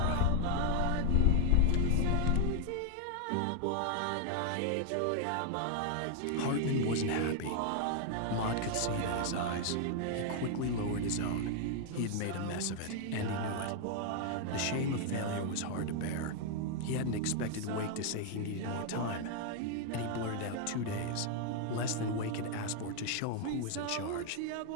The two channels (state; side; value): different; both; correlation 0.00